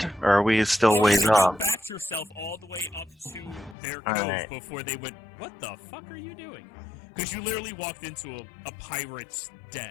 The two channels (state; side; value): drops out; right; at 3.8 s